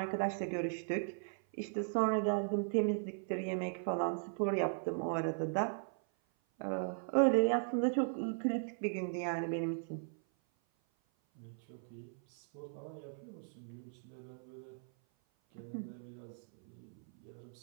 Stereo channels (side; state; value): left; silent; 52 dB below the other